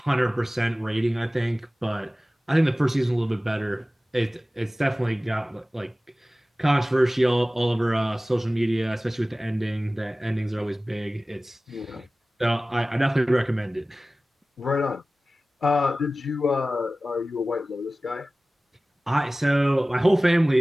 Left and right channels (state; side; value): normal; both; correlation 0.97